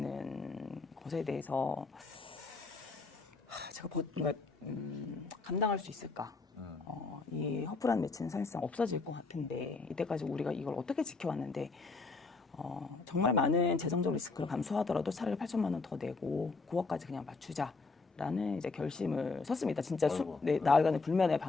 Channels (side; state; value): right; quieter; 4.0 dB